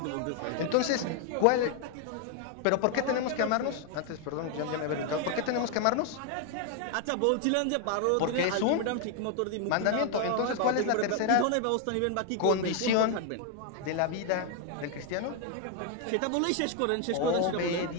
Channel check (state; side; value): different; both; correlation 0.00